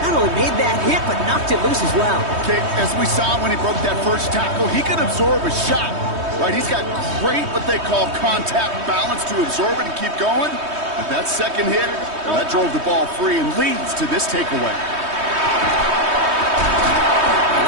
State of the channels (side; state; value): left; late; 3.2 ms